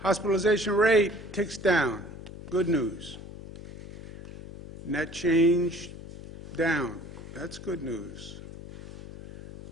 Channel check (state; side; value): noise; left; hum, 14 dB below the sound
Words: rate ticks down. Good news. Net change down. That's good news.